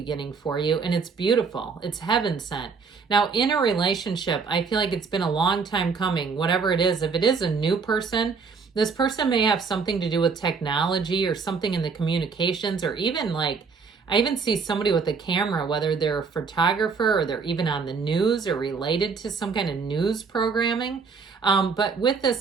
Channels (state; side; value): quieter; left; 5.2 dB